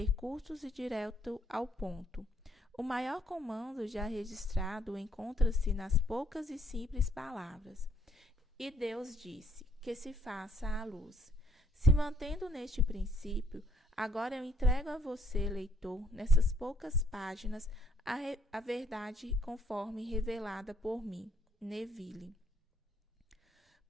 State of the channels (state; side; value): normal; both; correlation 0.68